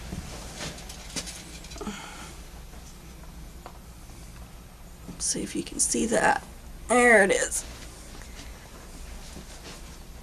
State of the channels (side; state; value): both; identical; correlation 1.00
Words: Let's see if you can see that. There it is.